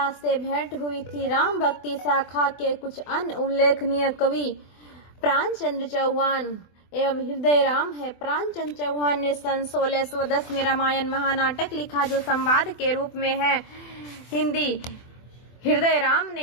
से भेंट हुई थी। राम भक्ति शाखा के कुछ अन्य उल्लेखनीय कवि प्राणचंद्र चौहान एवं हृदय राम है। प्राणचंद्र चौहान ने सन 1610 में रामायण महानाटक लिखा, जो संवाद के रूप में है हिंदी। हृदय राम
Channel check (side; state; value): right; late; 24 ms